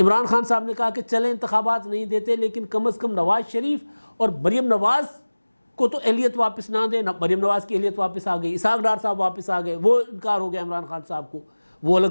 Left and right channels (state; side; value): inverted; both; correlation -1.00